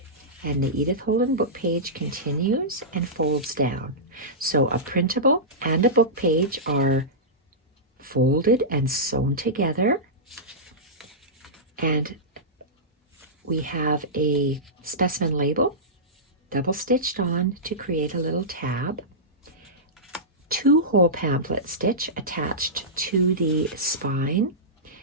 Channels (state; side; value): normal; both; correlation -0.16